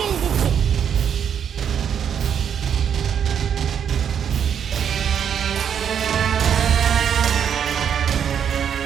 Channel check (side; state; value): left; quieter; 8.2 dB